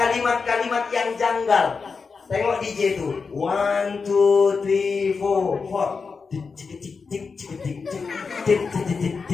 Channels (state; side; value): quieter; right; 5.0 dB